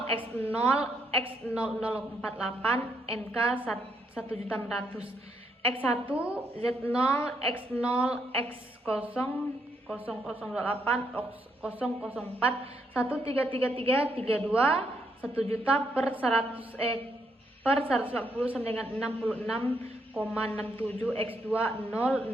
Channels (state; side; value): normal; both; correlation 0.75